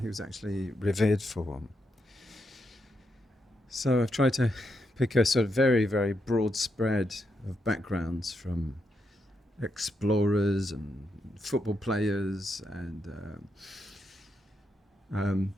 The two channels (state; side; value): normal; both; correlation 0.82